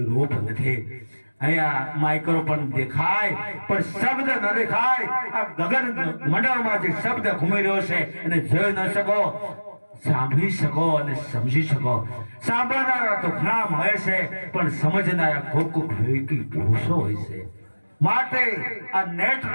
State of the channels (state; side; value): inverted; both; correlation -1.00